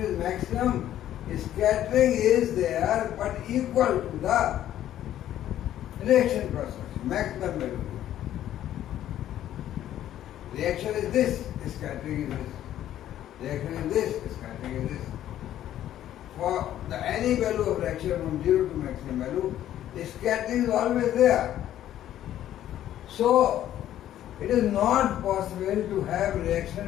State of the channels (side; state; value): right; quieter; 12.0 dB